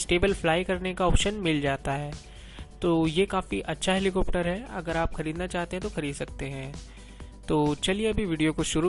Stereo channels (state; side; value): identical; both; correlation 1.00